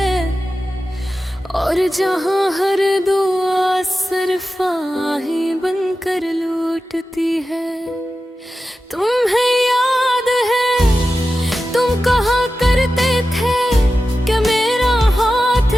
और जहाँ हर दुआ सिर्फ आहें बनकर लूटती है। तुम्हें याद है तुम कहा करते थे कि मेरा हाथ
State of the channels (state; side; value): normal; both; correlation 0.93